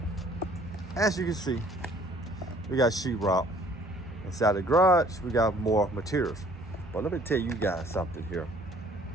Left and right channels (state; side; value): normal; both; correlation 0.57